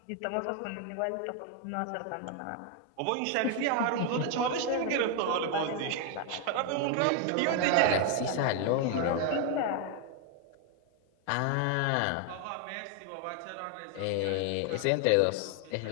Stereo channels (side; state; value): both; different; correlation 0.01